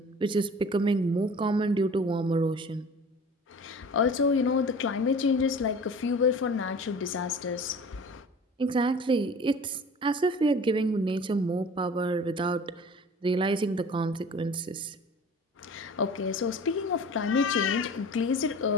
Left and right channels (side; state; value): both; normal; correlation 0.42